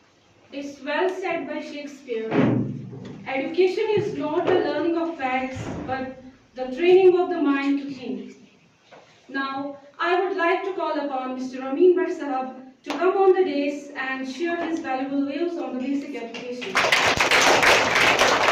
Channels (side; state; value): both; identical; correlation 1.00